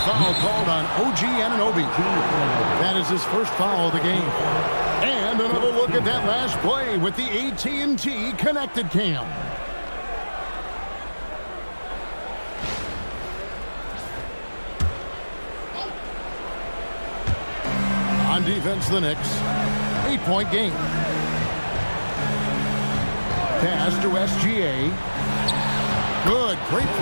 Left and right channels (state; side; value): inverted; both; correlation -1.00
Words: foul called on OG Anunoby. That is his first foul of the game. And another look at that last play with the AT&T Connected Cam. On defense, the Knicks. 8-point game. Pass to SGA. Good, great